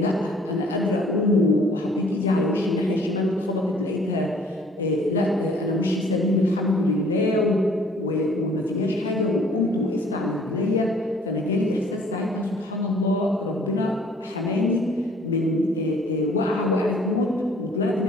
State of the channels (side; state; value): both; normal; correlation 0.56